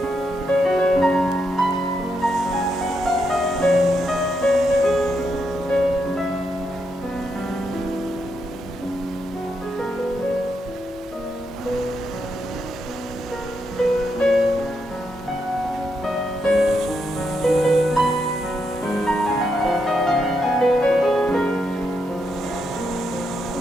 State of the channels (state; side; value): normal; both; correlation 0.81